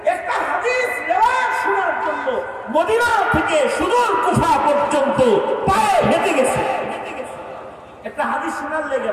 একটা হাদিস রিওয়ায়াত শোনার জন্য মদিনা থেকে সুদূর কুফা পর্যন্ত পায়ে হেঁটে গেছে। একটা হাদিস শোনার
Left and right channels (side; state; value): both; identical; correlation 1.00